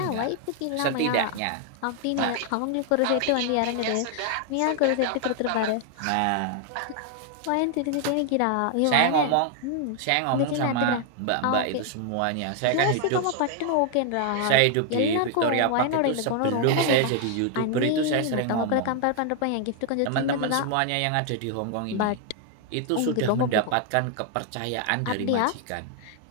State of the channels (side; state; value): both; different; correlation 0.00